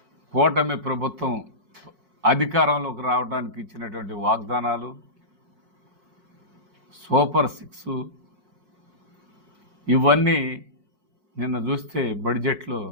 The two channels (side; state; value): left; late; 4.6 ms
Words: కూటమి ప్రభుత్వం అధికారంలోకి రావడానికి ఇచ్చినటువంటి వాగ్దానాలు, సూపర్ 6 ఇవన్నీ నిన్న చూస్తే బడ్జెట్లో